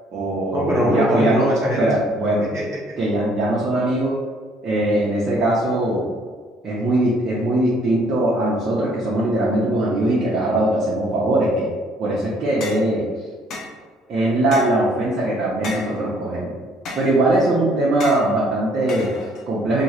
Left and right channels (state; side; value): normal; both; correlation 0.63